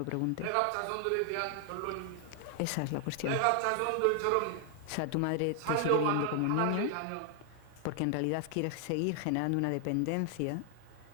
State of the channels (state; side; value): different; both; correlation 0.00